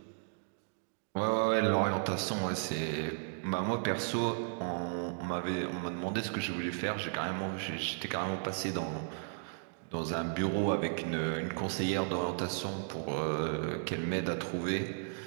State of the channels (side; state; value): left; silent; digital silence